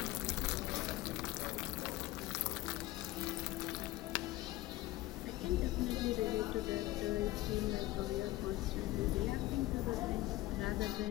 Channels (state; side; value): quieter; right; 17.6 dB